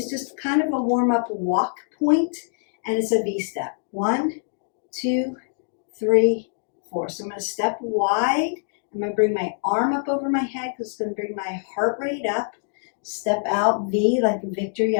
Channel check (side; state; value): right; silent; 62 dB below the other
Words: just kind of a warm-up walk point, and it's a V-step. 1, 2, 3, 4. So I'm going to step wide. I'm going to bring my arm up over my head because it's going to bring my heart rate up. Step out, V, like victory,